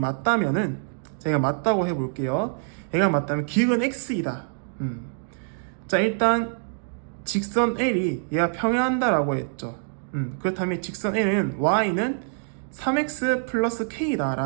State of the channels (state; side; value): silent; left; digital silence